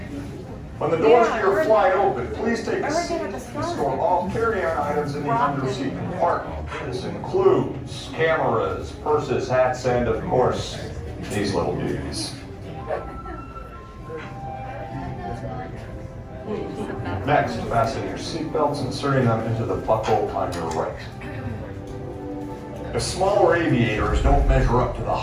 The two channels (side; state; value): both; identical; correlation 1.00